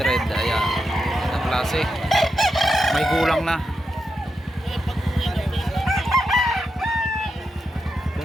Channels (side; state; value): both; normal; correlation 0.86